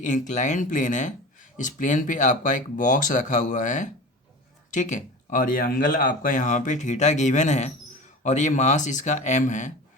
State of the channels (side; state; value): both; normal; correlation 0.34